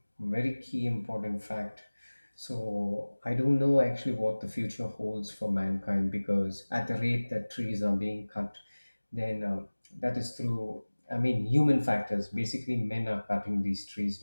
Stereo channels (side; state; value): both; inverted; correlation -1.00